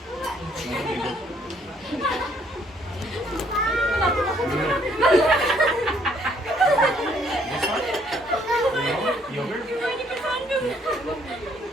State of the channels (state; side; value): normal; both; correlation 0.66